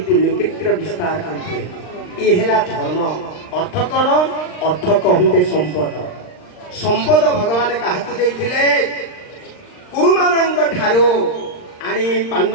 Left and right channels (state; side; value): late; right; 39 ms